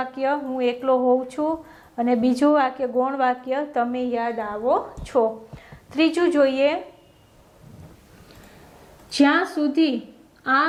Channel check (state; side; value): identical; both; correlation 1.00